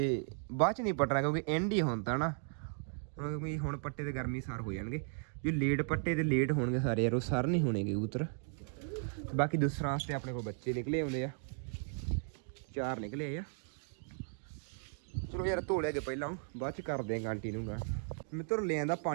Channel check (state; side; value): silent; left; 54 dB below the other